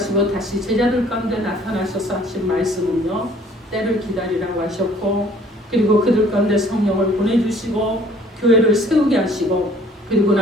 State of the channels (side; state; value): both; normal; correlation 0.55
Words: 다시 제자들 가운데 나타나셔서 하신 말씀은요 때를 기다리라고 하셨고 그리고 그들 가운데 성령을 보내주시고 교회를 세우게 하시고 그리고